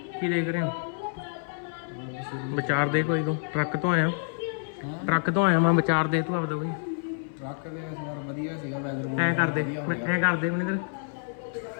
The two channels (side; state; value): right; silent; 57 dB below the other